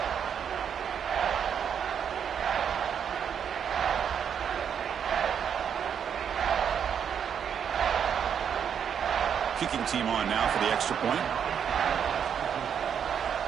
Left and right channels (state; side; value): quieter; left; 7.9 dB